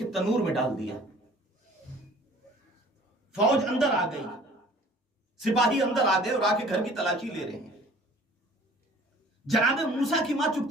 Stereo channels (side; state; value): both; normal; correlation 0.51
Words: تنور میں ڈال دیا. فوج اندر آ گئی, سپاہی اندر آ گئے اور آ کے گھر کی تلاشی لے رہے ہیں. جناب موسیٰ کی ماں